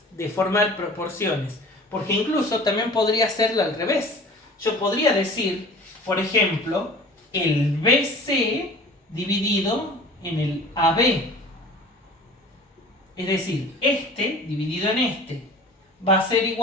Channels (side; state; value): both; normal; correlation 0.43